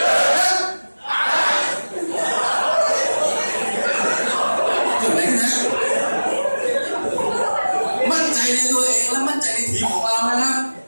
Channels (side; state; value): both; inverted; correlation -1.00